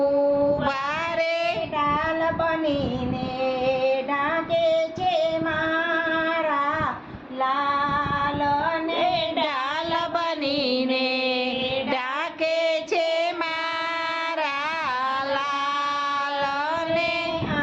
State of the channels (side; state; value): both; identical; correlation 1.00